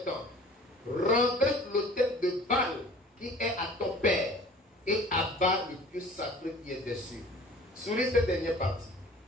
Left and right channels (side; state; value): both; normal; correlation 0.47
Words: ans. Renverse l'autel de Baal qui est à ton père et abat le pieu sacré qui est dessus. Souligne cette dernière partie.